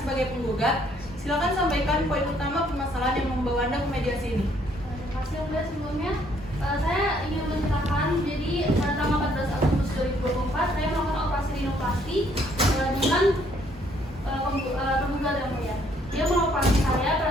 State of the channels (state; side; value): normal; both; correlation 0.66